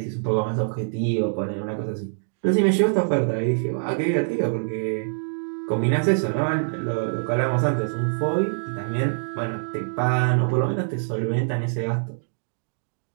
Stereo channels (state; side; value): silent; left; digital silence